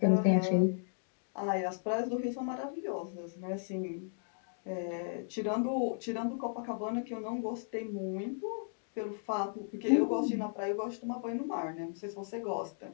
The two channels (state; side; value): silent; right; digital silence